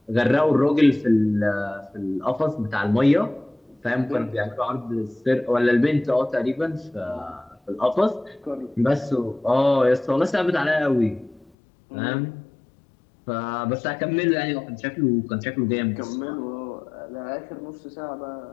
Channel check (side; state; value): right; drops out; at 11.5 s